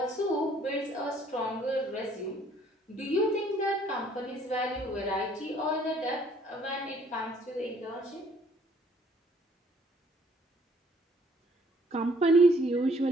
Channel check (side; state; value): both; normal; correlation 0.62